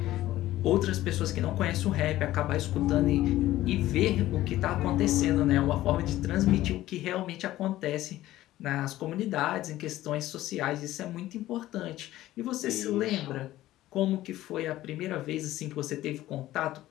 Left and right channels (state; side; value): quieter; right; 15.2 dB